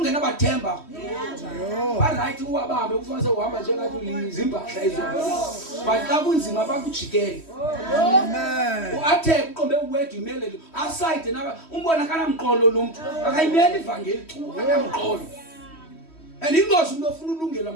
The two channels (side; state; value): right; late; 3.1 ms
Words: can never temper. Yo. Right, who are ufanele uhamba njengathi izimpahla ezobona. But xa kunzima bakujikele. Amen. Uathe uqombe uwedwa imele aside naba umbona kana mqolo lo muntu akayimeli ivangeli chu akamqolo. And ingozi umuntu ofuna ulungela